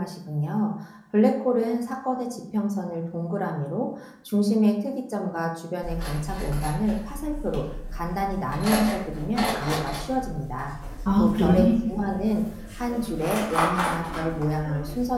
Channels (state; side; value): identical; both; correlation 1.00